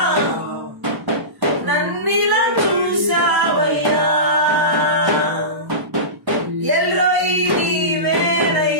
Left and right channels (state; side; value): late; left; 1.0 ms